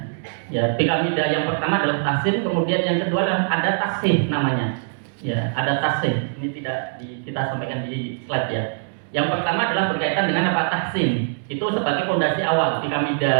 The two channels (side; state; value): left; silent; digital silence